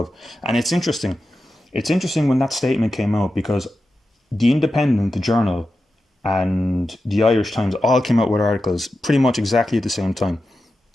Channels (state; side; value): normal; both; correlation 0.91